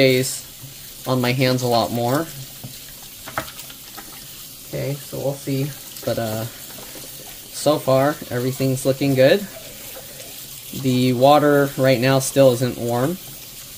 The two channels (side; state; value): both; identical; correlation 1.00